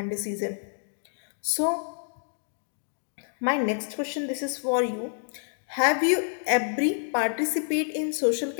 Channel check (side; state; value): right; silent; digital silence